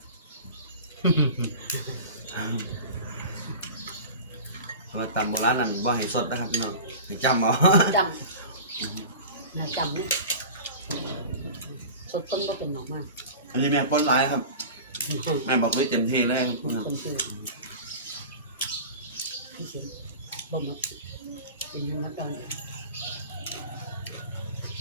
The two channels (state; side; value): inverted; both; correlation -0.34